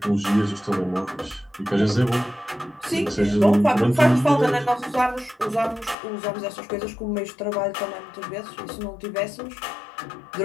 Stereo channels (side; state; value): right; drops out; at 6.0 s